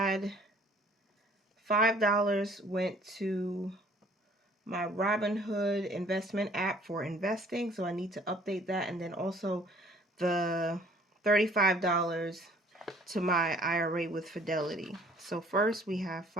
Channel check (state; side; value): normal; both; correlation 0.56